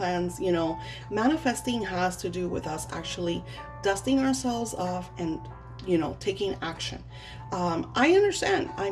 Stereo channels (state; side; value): identical; both; correlation 1.00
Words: Manifesting has to do with us actually dusting ourselves off and taking action. I understand,